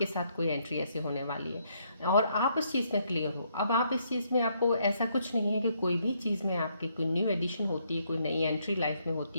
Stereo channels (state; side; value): inverted; both; correlation -0.73